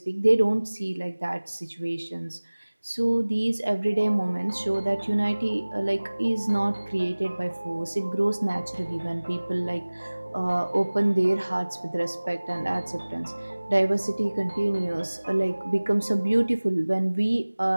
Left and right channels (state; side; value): inverted; both; correlation -1.00